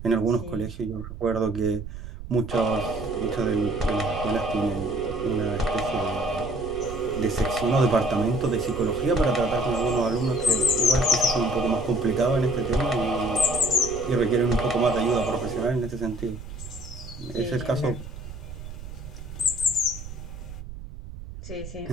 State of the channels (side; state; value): right; noise; rumble, 12 dB below the sound